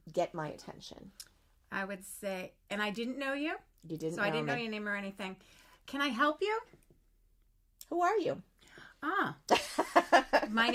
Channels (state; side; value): identical; both; correlation 1.00